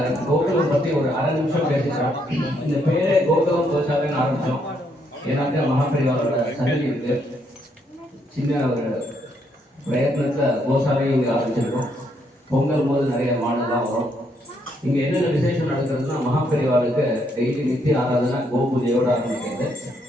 கோகுலம் பற்றி ஒரு அரை நிமிஷம் பேசிக்கிறோம். இந்த பேரே கோகுலம் கோசாலைன்னு ஆரம்பித்தோம். ஏன்னாக்கா மகாபரிவாரோட சன்னதி இருக்கு. சின்ன ஒரு பிரயத்னத்தில் கோசாலையும் இங்கே ஆரம்பிச்சிருக்கோம். பொங்கல் போது நிறைய மாடெல்லாம் வரும். இங்கே என்னென்ன விசேஷம் நடக்கிறதுனா மகாபரிவாளுக்கு டெய்லி நித்திய ஆராதனை கோபூஜையோடு ஆரம்பிக்கிறது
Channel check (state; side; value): normal; both; correlation 0.73